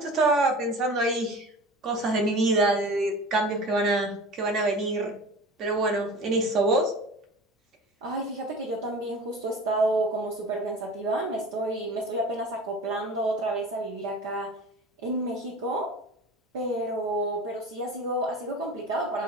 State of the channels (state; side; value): normal; both; correlation 0.37